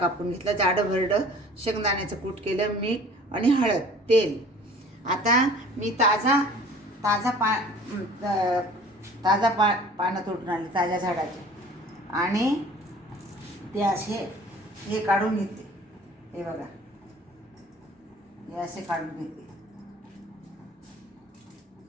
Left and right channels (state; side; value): normal; both; correlation 0.48